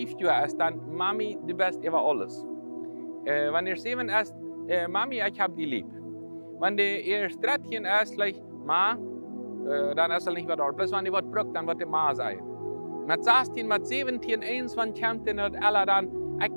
Jahre ist, dann Mami, du bist über alles. Wenn er 7 ist, Mami, ich hab dich lieb. Wenn er 13 ist, gleich, Ma, dann ist er nicht mehr da. Bloß wenn er was braucht, dann wird er Ma sein. Mit 16, mit 17, 21 kommt er nicht alle dann, ich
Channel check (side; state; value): both; inverted; correlation -1.00